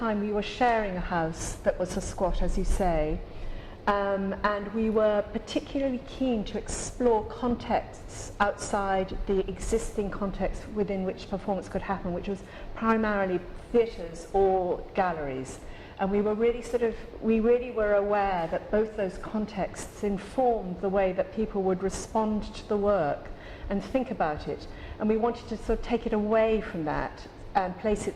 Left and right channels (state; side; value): identical; both; correlation 1.00